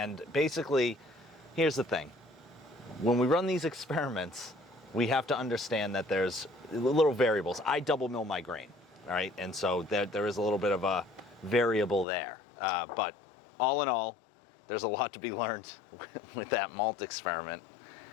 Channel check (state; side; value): drops out; right; at 12.1 s